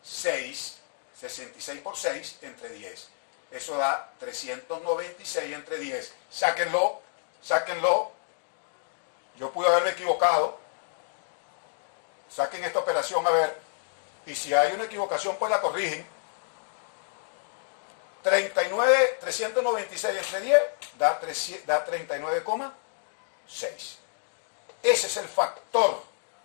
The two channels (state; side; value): silent; right; digital silence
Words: 6. 66 por 6 entre 10. Eso da 396 entre 10. Sáquenlo. Yo pude haberme equivocado. Saquen esta operación a ver. Y si hay una equivocación, pues la corrigen. 396 entre 10 da 39,6. Ese es el factor